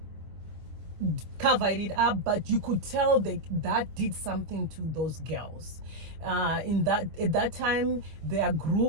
cover it up, but you could tell that did something to those girls. At that time, their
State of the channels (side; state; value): left; late; 25 ms